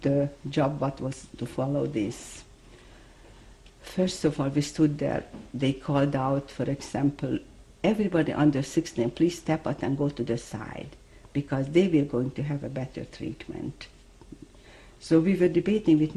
job, what was to follow this. First of all, we stood there, they called out, for example, everybody under 16, please step out and go to the side, because they were going to have a better treatment. So we were debating with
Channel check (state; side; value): identical; both; correlation 1.00